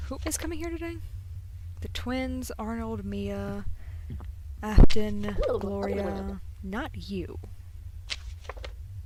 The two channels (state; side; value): identical; both; correlation 1.00